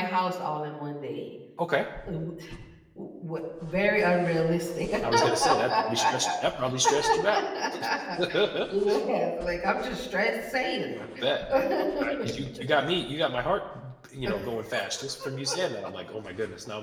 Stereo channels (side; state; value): both; identical; correlation 1.00